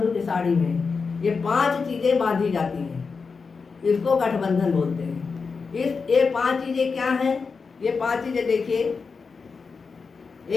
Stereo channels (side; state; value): right; quieter; 5.0 dB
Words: की साड़ी में ये 5 चीज़ें बांधी जाती हैं। इसको गठबंधन बोलते हैं। ये 5 चीज़ें क्या हैं? ये 5 चीज़ें देखिए,